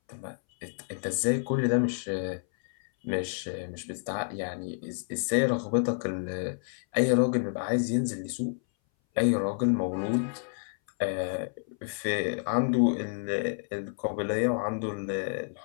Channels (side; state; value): right; silent; 58 dB below the other